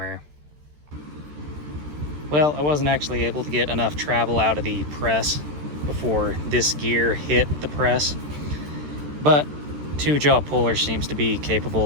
Well, I wasn't actually able to get enough travel out of the press before this gear hit the press, but 2-jaw puller seems to be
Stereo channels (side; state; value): left; late; 14 ms